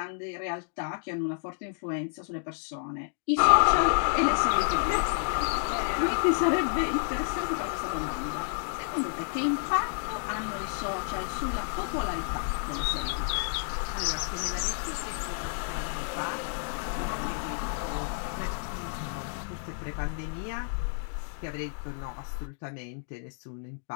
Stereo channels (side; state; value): right; silent; digital silence